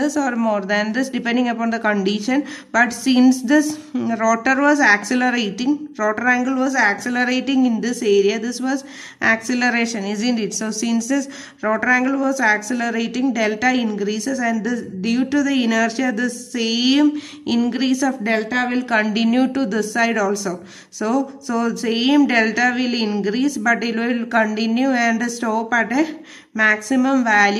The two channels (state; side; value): identical; both; correlation 1.00